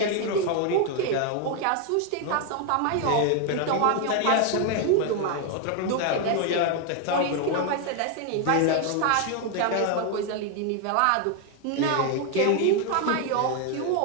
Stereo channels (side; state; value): both; different; correlation 0.01